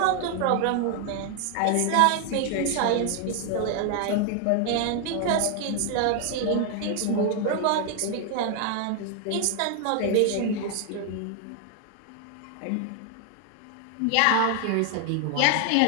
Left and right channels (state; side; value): different; both; correlation 0.00